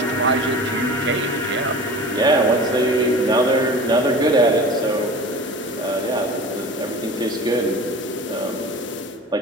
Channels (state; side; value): normal; both; correlation 0.38